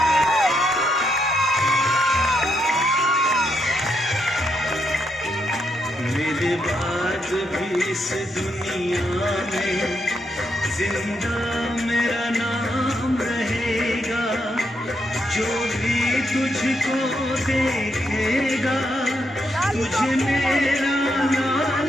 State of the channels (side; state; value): both; normal; correlation 0.79